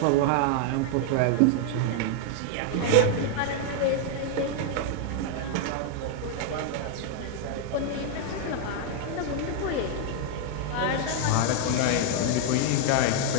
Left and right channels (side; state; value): both; different; correlation 0.00